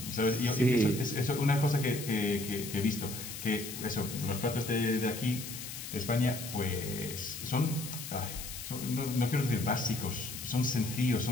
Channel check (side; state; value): left; noise; hiss, 9 dB below the sound